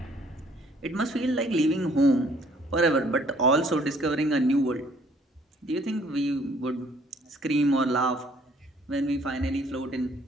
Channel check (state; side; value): normal; both; correlation 0.61